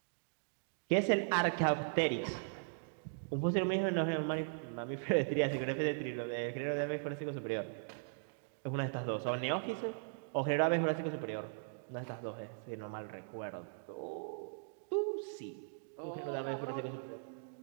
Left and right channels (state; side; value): silent; left; digital silence